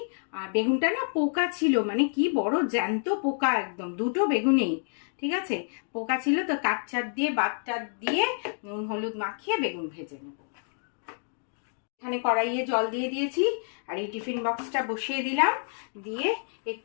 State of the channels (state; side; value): silent; right; digital silence